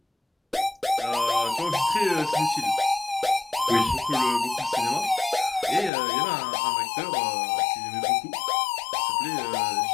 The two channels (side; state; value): right; drops out; at 5.9 s